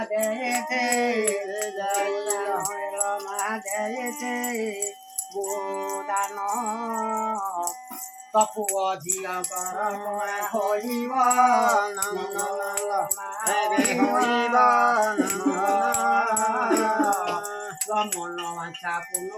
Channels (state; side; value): identical; both; correlation 1.00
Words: দেতে যাইল মা দেতে বুদান তপু অধিয়া কর হইব হইব মন মাছা